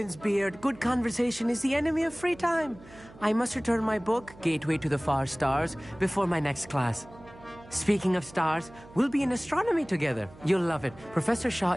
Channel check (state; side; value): noise; right; hum, 21 dB below the sound